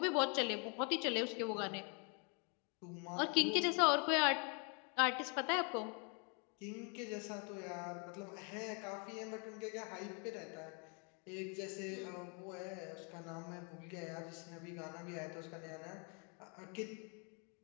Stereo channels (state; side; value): quieter; right; 36.2 dB